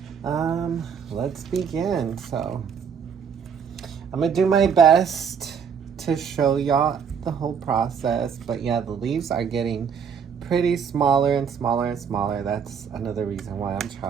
let's begin. So I'm gonna do my best to show y'all the whole process, but yeah, the leaves are getting pretty smaller and smaller. That's another reason why I'm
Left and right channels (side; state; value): left; quieter; 6.9 dB